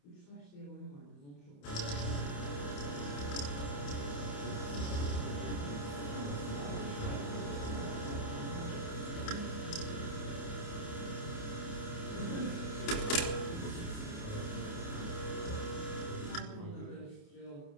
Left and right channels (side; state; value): right; late; 28 ms